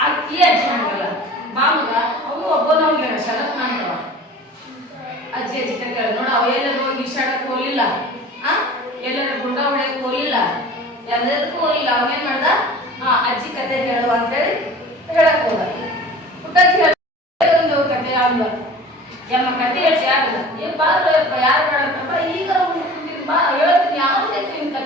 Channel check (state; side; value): normal; both; correlation 0.41